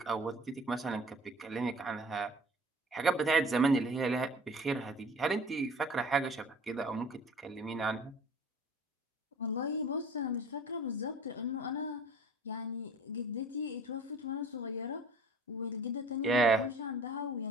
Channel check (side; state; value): both; normal; correlation 0.48